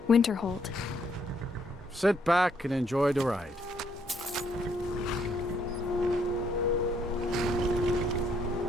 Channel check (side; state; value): both; normal; correlation 0.70